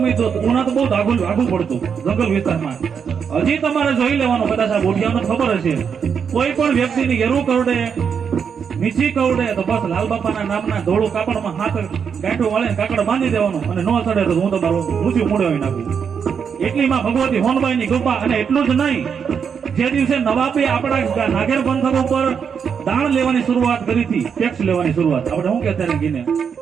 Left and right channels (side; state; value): left; quieter; 6.9 dB